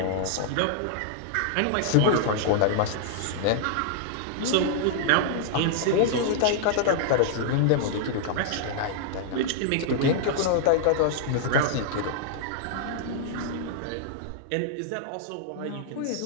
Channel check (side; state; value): both; different; correlation -0.01